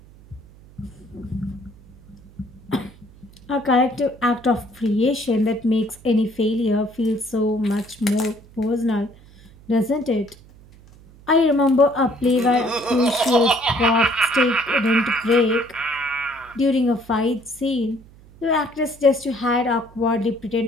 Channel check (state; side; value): noise; right; hum, 24 dB below the sound